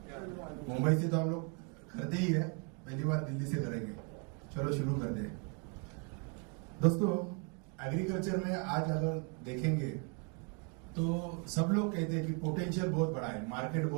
मुंबई से तो हम लोग करते ही है, पहली बार दिल्ली से करेंगे। चलो शुरू करते हैं। दोस्तों, एग्रीकल्चर में आज अगर देखेंगे तो सब लोग कहते हैं कि पोटेंशियल बहुत बड़ा है, मार्केट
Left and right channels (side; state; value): left; quieter; 34.7 dB